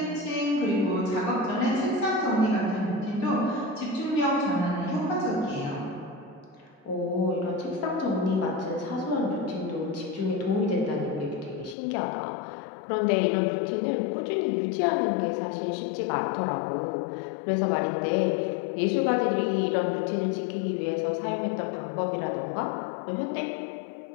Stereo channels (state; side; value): drops out; right; at 11.8 s